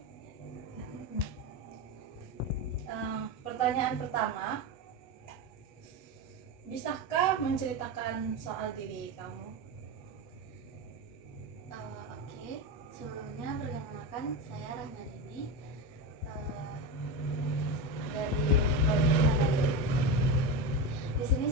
Pertanyaan pertama, bisakah menceritakan soal diri kamu? Oke. Sebelumnya perkenalkan, saya Rahmadini dari Politeknik Manajemen. Di sini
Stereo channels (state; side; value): late; right; 8.4 ms